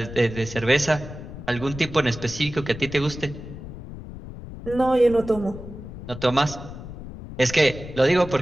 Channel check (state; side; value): noise; left; rumble, 12 dB below the sound